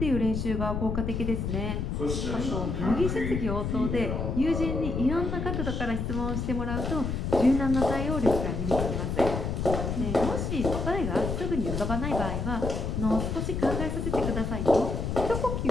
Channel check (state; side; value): noise; left; rumble, 2 dB below the sound